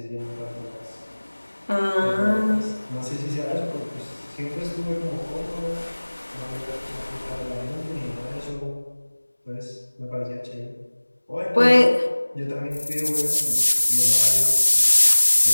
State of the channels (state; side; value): inverted; both; correlation -1.00